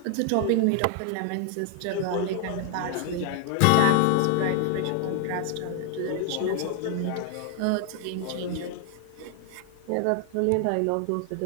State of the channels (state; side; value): different; both; correlation 0.00